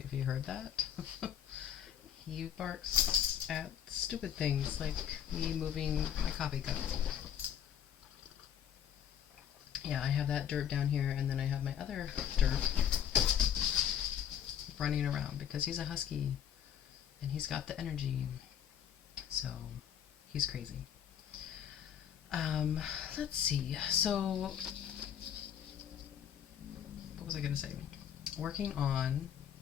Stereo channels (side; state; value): right; quieter; 9.2 dB